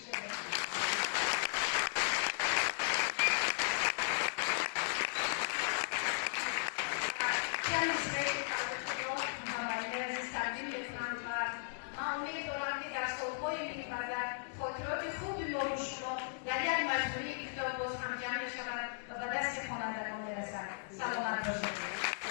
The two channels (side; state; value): right; silent; digital silence